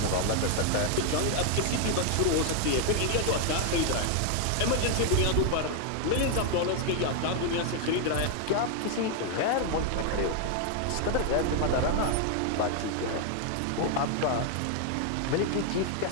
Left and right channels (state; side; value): different; both; correlation 0.00